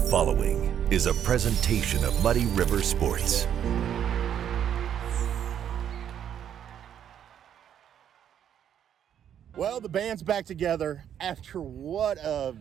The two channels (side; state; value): left; quieter; 9.5 dB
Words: is a presentation of Muddy River Sports. Well, the band's back together after I